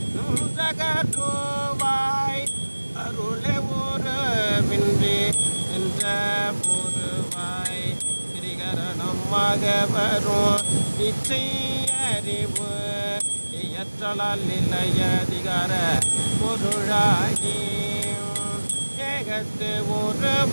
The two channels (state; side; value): inverted; both; correlation -1.00